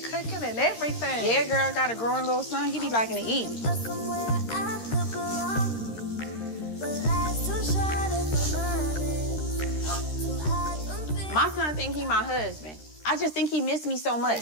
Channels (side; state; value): right; late; 13 ms